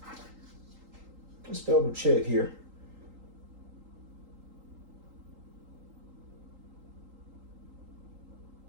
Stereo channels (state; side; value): late; left; 3.8 ms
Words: Let's double check here.